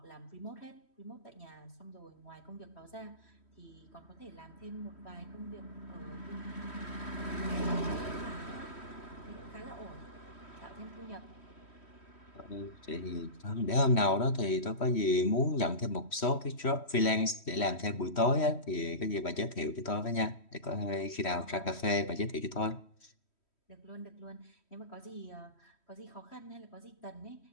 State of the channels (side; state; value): right; late; 3.1 ms